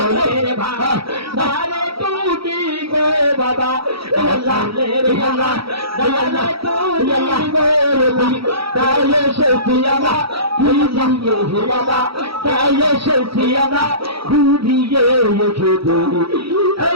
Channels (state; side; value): late; left; 0.75 ms